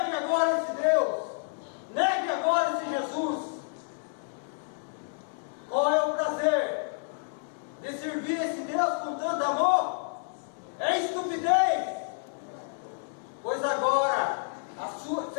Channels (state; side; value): silent; right; digital silence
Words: agora esse Deus. Negue agora esse Jesus. Qual é o prazer de servir esse Deus com tanto amor? É estupidez. Pois agora